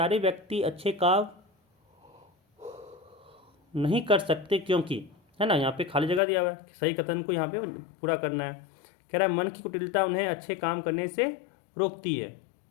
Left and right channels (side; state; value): right; drops out; at 6.2 s